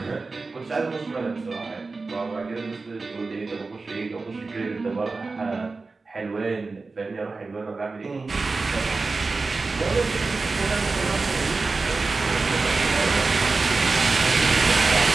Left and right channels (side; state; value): left; quieter; 3.9 dB